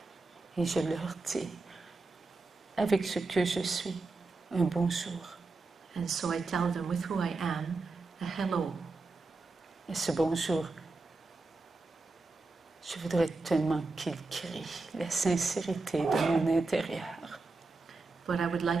Et je leur dis, avec ce que je suis, un bonjour. And so I tell them with who I am, a hello. Et ce bonjour, je voudrais tellement qu'il crie la sincérité de mon intérieur. But I would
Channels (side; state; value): left; quieter; 3.6 dB